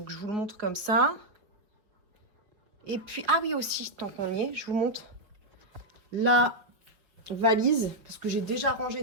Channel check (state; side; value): late; left; 5.0 ms